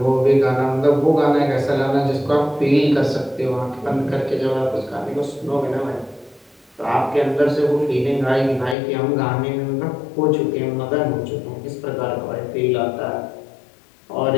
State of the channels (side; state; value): right; drops out; at 8.8 s